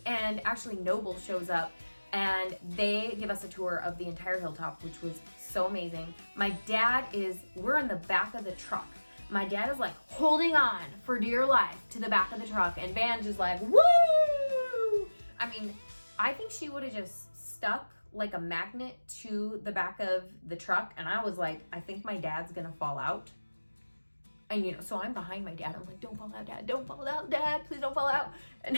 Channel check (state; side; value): inverted; both; correlation -1.00